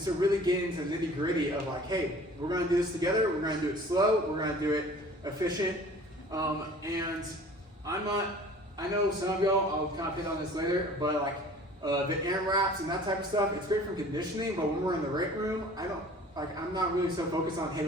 so really getting into the nitty gritty of like, hey, we're going to do this together, we're going to do it slow, we're going to do it efficient. And I know some of y'all, I'll kind of hit on this later, but like the AMRAPs and that type of stuff, it's great for conditioning, but when we're in the weight room, I'm not really so focused on, hey,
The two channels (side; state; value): both; normal; correlation 0.47